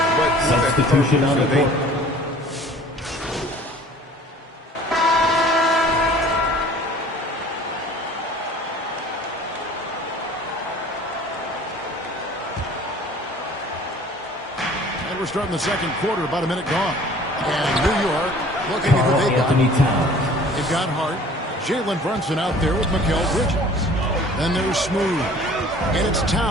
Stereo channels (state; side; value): normal; both; correlation 0.49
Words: Substitution on the court. And we're starting the second quarter, about a minute gone. And New York looking at what they got. They've got Hart. Jalen Brunson out there with Mikal Bridges. Then there's Smooth. And it's